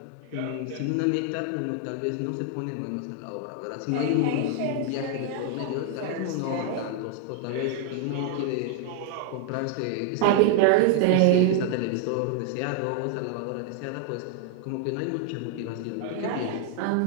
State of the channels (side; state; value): both; different; correlation 0.00